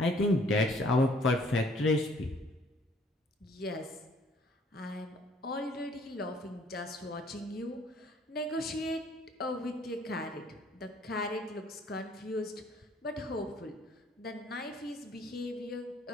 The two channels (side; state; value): both; normal; correlation 0.60